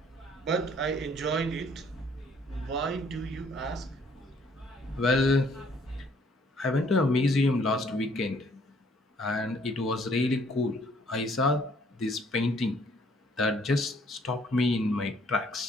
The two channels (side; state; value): both; normal; correlation 0.63